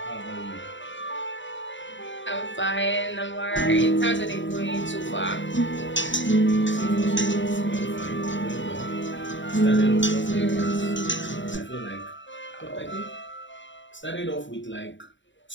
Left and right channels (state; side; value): late; right; 0.54 ms